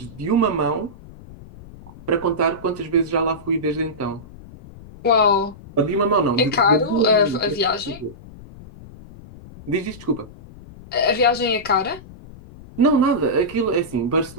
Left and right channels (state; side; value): noise; left; rumble, 19 dB below the sound